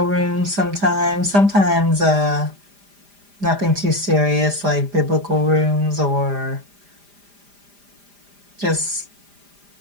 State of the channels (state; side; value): late; left; 5.0 ms